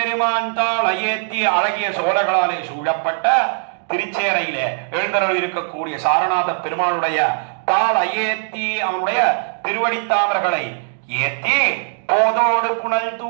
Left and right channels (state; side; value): silent; left; digital silence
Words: தாளையேத்தி, அழகிய சோழர்களாலே சூழப்பட்ட திருச்சேரையிலே எழுந்தருள் இருக்கக்கூடிய சாரநாத பெருமானுடைய தாள் அயேத்தி, அவனுடைய திருவடித்தாமர்களை ஏத்தி போதோடு புனல்